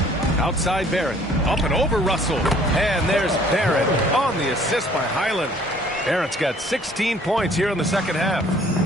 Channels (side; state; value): both; normal; correlation 0.57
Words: Outside Barrett. Up and over Russell. And there's Barrett on the assist by Highland. Barrett's got 16 points here in the second half.